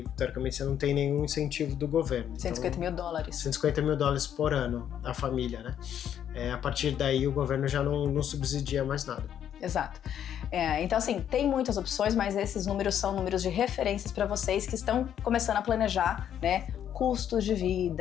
teoricamente, você não tem nenhum incentivo do governo. 150 mil dólares. 150 mil dólares por ano, a família, né? A partir daí, o governo já não subsidia mais nada. Exato. Então, assim, tem muitas opções, mas esses números são números de referências para vocês que estão começando a planejar, né, custos de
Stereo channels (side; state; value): right; quieter; 9.7 dB